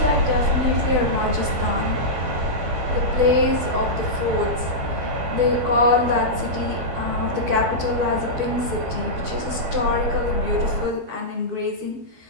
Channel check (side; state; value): left; late; 12 ms